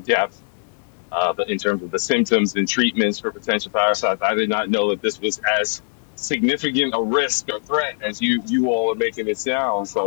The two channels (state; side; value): silent; right; digital silence